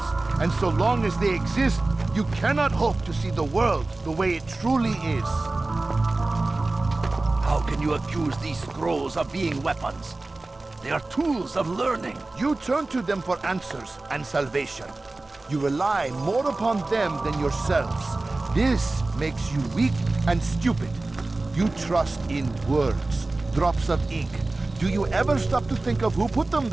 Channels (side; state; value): left; quieter; 3.1 dB